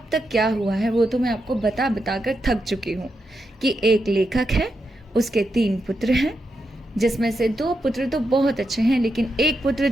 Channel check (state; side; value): normal; both; correlation 0.85